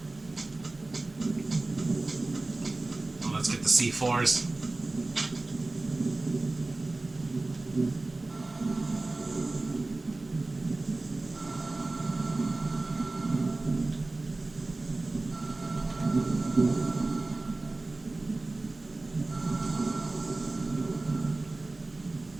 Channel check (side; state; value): left; quieter; 3.1 dB